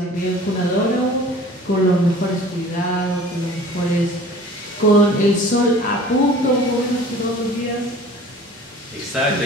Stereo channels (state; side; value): normal; both; correlation 0.46